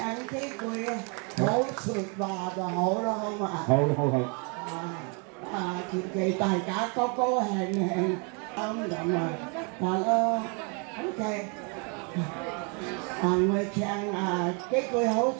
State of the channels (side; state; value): left; quieter; 35.5 dB